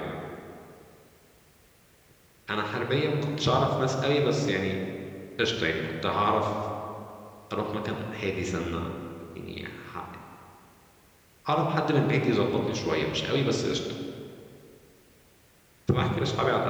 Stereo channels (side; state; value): both; identical; correlation 1.00